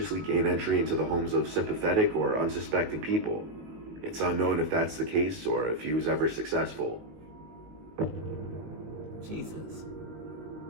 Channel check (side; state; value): left; late; 18 ms